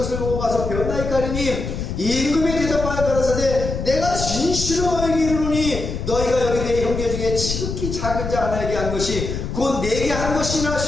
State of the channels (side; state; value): left; noise; rumble, 5 dB below the sound